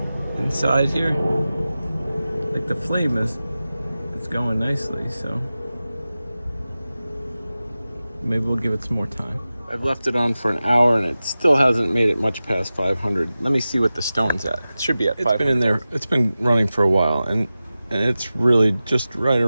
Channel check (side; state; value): both; inverted; correlation -0.95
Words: inside here, like the flame it's going nicely, so maybe we'll give it some more time. I've left it on for an hour and it still hasn't made it much past 500. Let me see what the stone's at. It should be at 500. It's been in there. It's been running for a while, and it's really just right